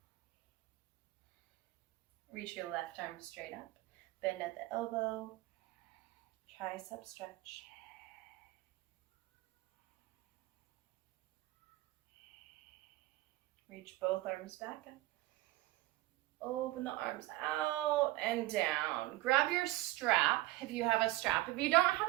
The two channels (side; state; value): left; quieter; 17.8 dB